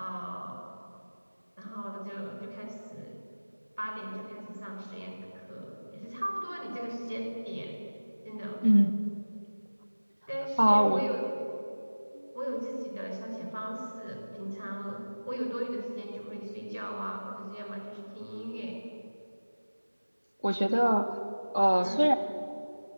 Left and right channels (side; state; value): both; inverted; correlation -1.00